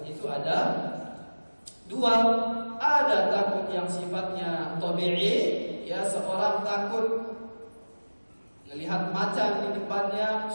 itu ada dua. Ada takut yang sifatnya tabi'i, ya, seorang takut melihat macan di depannya,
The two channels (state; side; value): inverted; both; correlation -1.00